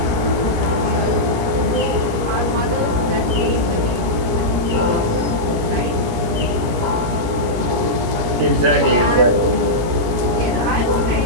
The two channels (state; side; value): late; left; 17 ms